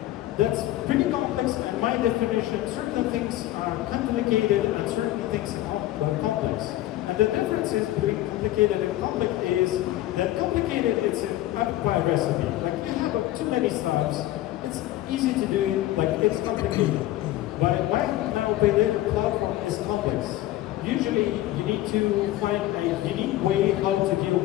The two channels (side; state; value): right; quieter; 15.1 dB